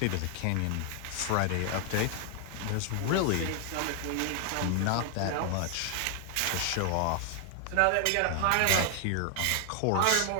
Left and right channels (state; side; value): different; both; correlation 0.00